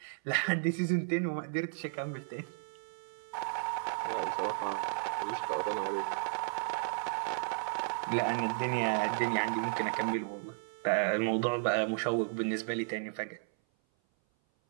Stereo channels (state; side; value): silent; left; 55 dB below the other